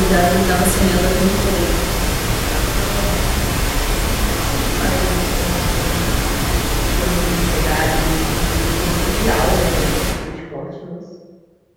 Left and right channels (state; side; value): identical; both; correlation 1.00